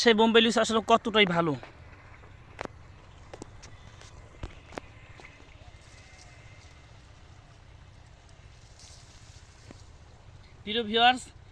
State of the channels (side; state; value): both; identical; correlation 1.00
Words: বোম্বাই লিচু আসলে কতটাই ভালো। প্রিয় ভিউয়ার্স,